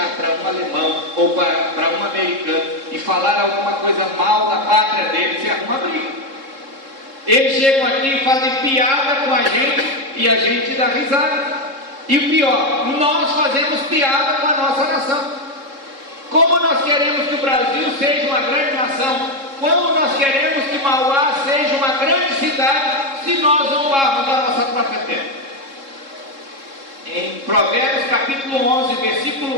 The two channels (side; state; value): left; late; 3.7 ms